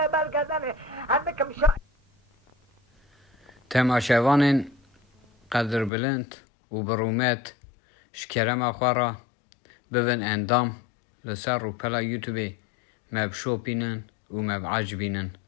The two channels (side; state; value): right; drops out; at 5.9 s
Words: بالكذا عندك مشا تماشاوان قدر بلند و برومت شکرم اخوارا ببن اندام لسر رو پلا یوتیوبی مب شو بینن و مب عجبینن